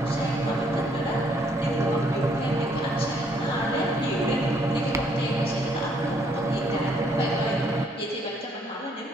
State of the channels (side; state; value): both; normal; correlation 0.67